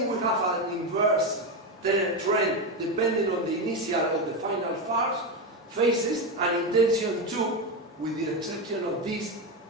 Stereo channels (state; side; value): normal; both; correlation 0.13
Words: we have an inverse trend depending on the initial or the final phases, and in tension 2, with the exception of this